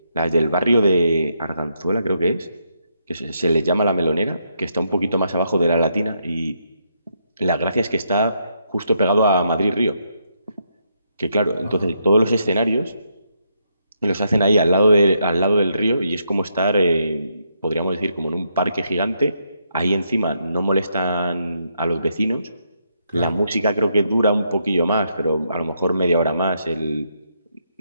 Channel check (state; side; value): inverted; both; correlation -0.78